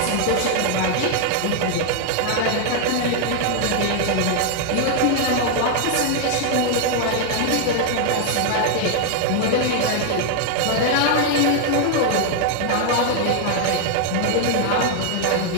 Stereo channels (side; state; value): both; different; correlation 0.00